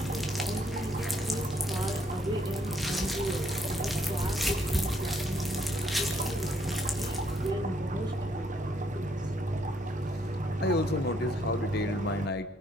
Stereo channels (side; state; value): both; normal; correlation 0.70